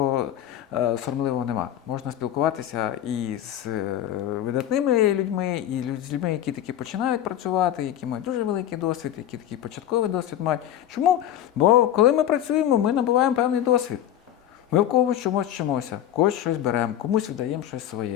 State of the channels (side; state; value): right; quieter; 11.3 dB